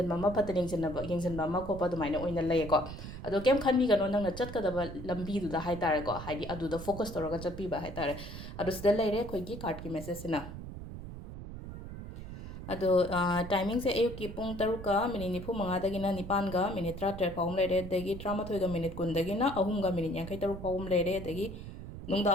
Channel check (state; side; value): noise; right; rumble, 10 dB below the sound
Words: मा फत येंजनबा मा खोप दुमाइना ओइना लईको अदो केम खनबीगनो नंगना चटकदबा लंबीदुदा हाइतारेको है अदुदा फोकस तौरगा चटपीबा हाइतारे अदो सिदा लेरे अखोइगी कार्ड की मेसेज सिना अदो टाइमिंग से अयुक की पुंग तरुका मिनिट निफु मंगादगिना निपानगा मिनिट 13 फाउम लेरे दगी 13 मिनिट कुंदगिना अहुमगा मिनिट यांखै तरुक फाउम लेरे दगी नुंगदा